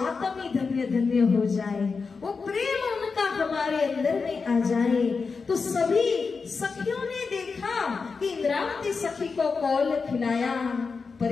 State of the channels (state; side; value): quieter; right; 4.8 dB